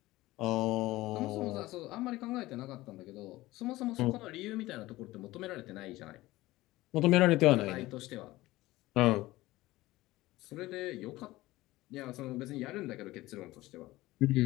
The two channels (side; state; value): right; quieter; 18.1 dB